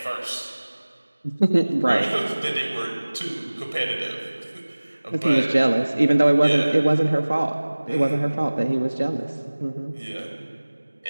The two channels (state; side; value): inverted; both; correlation -1.00